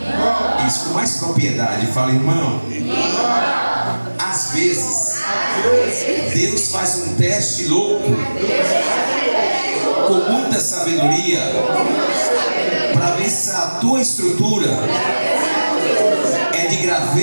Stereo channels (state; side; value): inverted; both; correlation -1.00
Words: Isso com mais propriedade. Fala: irmão. Às vezes Deus faz um teste louco, com muita sabedoria, para ver se a tua estrutura é de